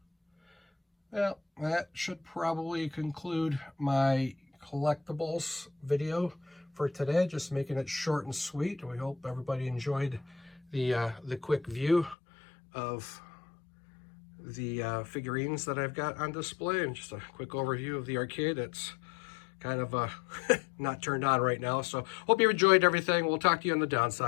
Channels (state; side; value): drops out; right; at 12.2 s